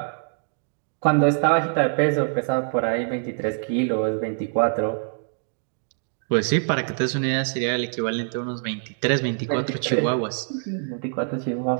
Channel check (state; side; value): silent; left; 62 dB below the other